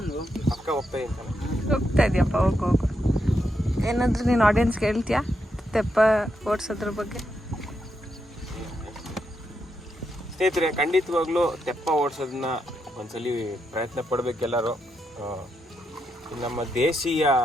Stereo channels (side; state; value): both; normal; correlation 0.82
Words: ಪಕ್ಕ ಹೋಗ್ತಾ ಇದ್ದಾನೆ. ಹೋಗ್ತಾ ಇದೆಯಪ್ಪ, ಹೋಗು. ಏನಾದರೂ ನೀನು ಆಡಿಯನ್ಸ್ಗೆ ಹೇಳ್ತೀಯಾ ತೆಪ್ಪ ಓಡಿಸೋದ್ರ ಬಗ್ಗೆ? ಸ್ನೇಹಿತರೆ, ಖಂಡಿತವಾಗ್ಲೂ ತೆಪ್ಪ ಓಡಿಸೋದನ್ನ ಒಂದ್ಸಲಿ ಪ್ರಯತ್ನ ಪಡಬೇಕೆಲ್ಲರೂ. ನಮ್ಮ ದೇಶೀಯ